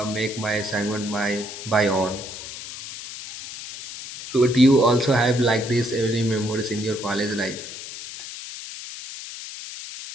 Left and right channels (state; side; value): noise; left; hiss, 11 dB below the sound